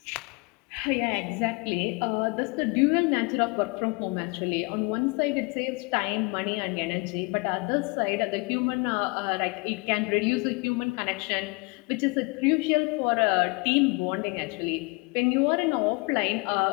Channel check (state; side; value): quieter; right; 29.2 dB